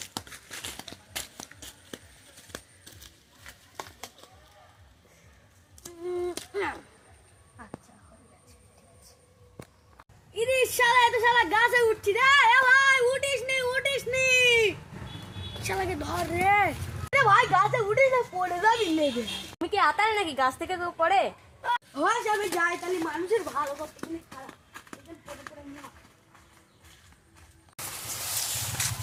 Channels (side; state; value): both; identical; correlation 1.00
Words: গাছে উঠছি রে, ভাই উঠিস নি শালাকে ধর রে। ভাই গাছে উঠিস না, পড়ে যাবি লেগে। তুমি কি আতারে নাকি গাছ থেকে কেউ পড়ে? হয় আমি যাই, তাহলে মানুষের ভালো করতে গেলে খারাপ।